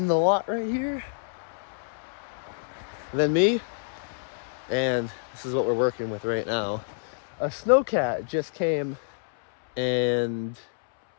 the lot right here. And then me. And this is what we're working with right now. A snowcat just came and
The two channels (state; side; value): silent; right; 60 dB below the other